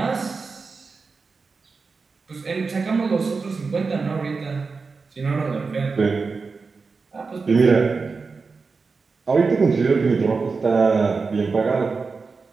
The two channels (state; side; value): quieter; left; 4.5 dB